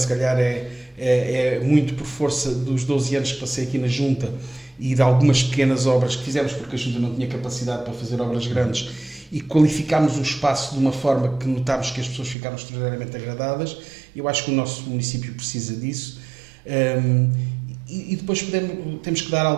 calhar, é muito por força dos 12 anos que passei aqui na Junta e de algumas pequenas obras que fizemos, porque a Junta não tinha capacidade para fazer obras grandes. e qualificámos o espaço de uma forma que notámos que as pessoas ficaram extraordinariamente agradadas. Eu acho que o nosso município precisa disso. E depois temos que dar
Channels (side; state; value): left; drops out; at 12.4 s